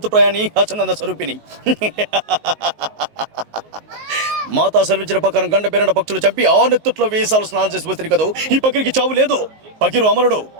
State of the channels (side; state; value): left; late; 19 ms